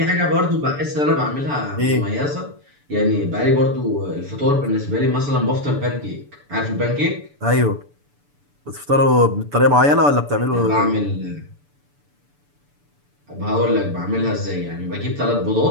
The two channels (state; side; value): late; left; 6.9 ms